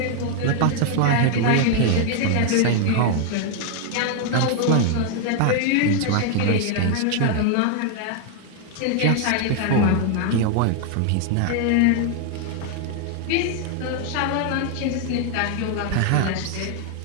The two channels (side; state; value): both; different; correlation 0.00